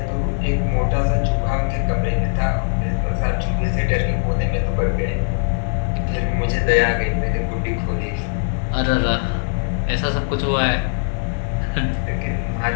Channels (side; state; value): right; silent; digital silence